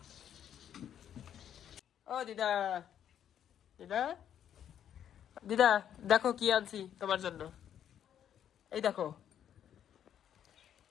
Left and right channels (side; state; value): right; quieter; 9.7 dB